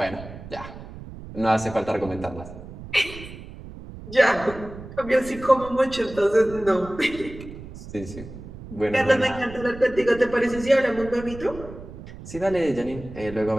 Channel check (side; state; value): right; noise; rumble, 14 dB below the sound